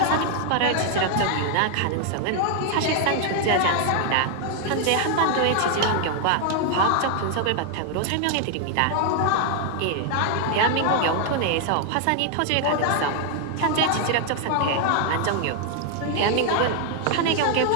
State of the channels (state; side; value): different; both; correlation 0.00